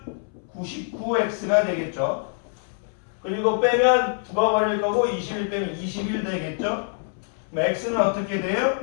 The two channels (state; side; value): silent; right; 62 dB below the other